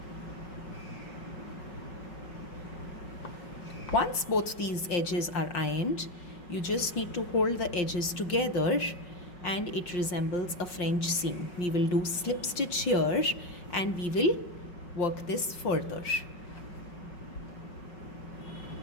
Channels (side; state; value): right; late; 5.4 ms